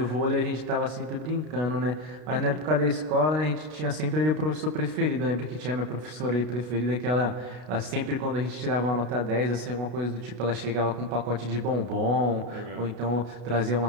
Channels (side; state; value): left; late; 32 ms